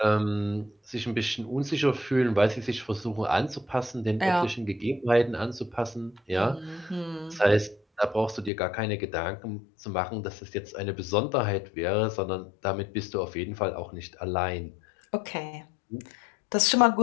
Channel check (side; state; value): right; drops out; at 8.5 s